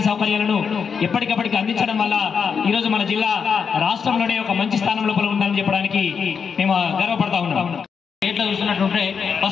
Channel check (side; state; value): right; quieter; 6.3 dB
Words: సౌకర్యాలను ఎప్పటికప్పటికి అందించడం వల్ల ఈరోజు మన జిల్లా రాష్ట్రంలోనే ఒక మంచి స్థానం లోపల ఉందని చెప్పడానికి మేము గర్వపడతా ఉన్నాం. స్టేట్లో చూసినట్టుంటే